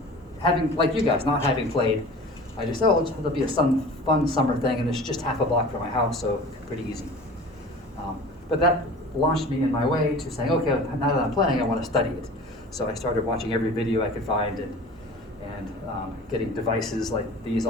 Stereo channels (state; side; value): normal; both; correlation 0.40